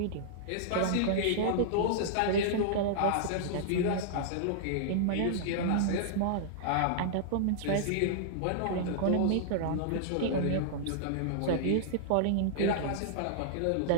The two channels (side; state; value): both; different; correlation -0.01